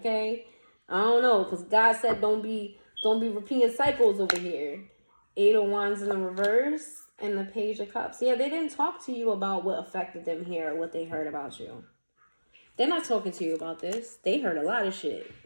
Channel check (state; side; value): inverted; both; correlation -1.00